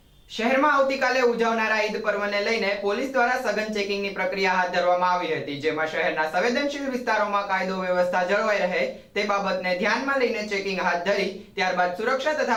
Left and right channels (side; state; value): both; identical; correlation 1.00